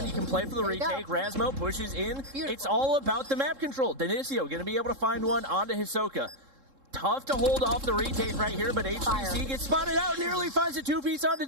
You can play for the retake. Rasmo pushes in. Beautiful. It's all about the map control. Denicio going to be able to find one onto Hisoka. Tough to hold off the retake right here, but HBC gets spotted out, nearly finds a 2-piece onto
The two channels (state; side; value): late; left; 3.7 ms